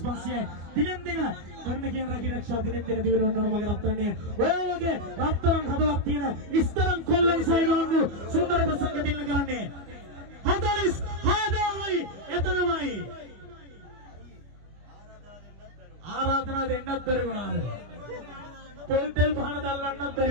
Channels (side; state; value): left; late; 25 ms